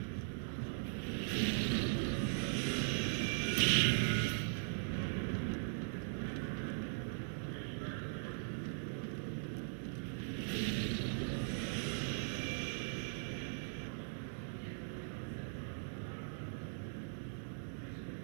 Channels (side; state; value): left; silent; digital silence